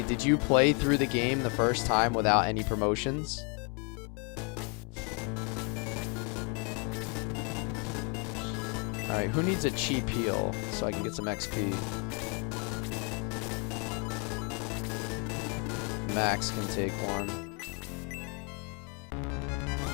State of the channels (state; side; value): quieter; right; 34.7 dB